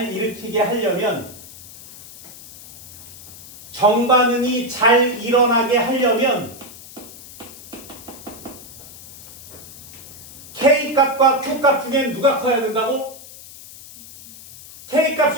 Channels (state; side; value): noise; left; hiss, 17 dB below the sound